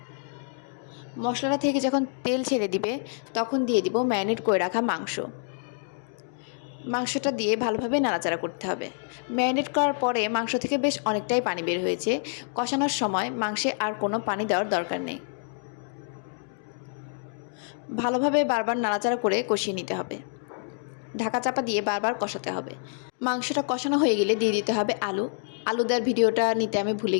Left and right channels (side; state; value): right; silent; 60 dB below the other